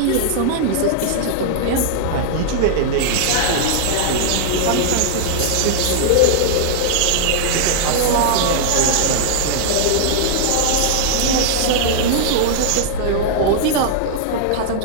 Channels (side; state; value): both; different; correlation -0.01